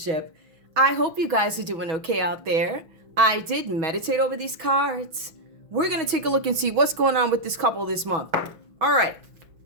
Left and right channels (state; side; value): late; left; 6.3 ms